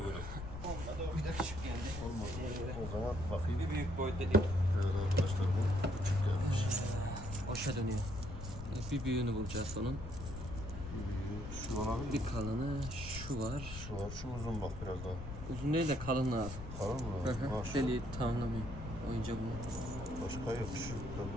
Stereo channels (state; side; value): noise; left; rumble, 9 dB below the sound